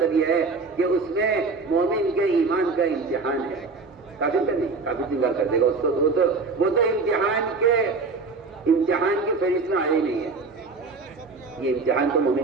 یہ ہے کہ اس میں مومن کے ایمان کا امتحان ہے. کافر کا نہیں, کافر انکار کر دے گا اس کو. وہ تو امتحان کی فہرست میں آیا ہی نہیں ہے. یہ امتحان تو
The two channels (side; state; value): left; quieter; 4.2 dB